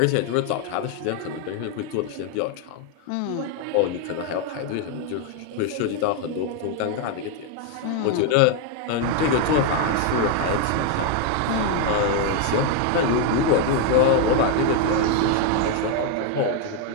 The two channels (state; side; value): different; both; correlation 0.01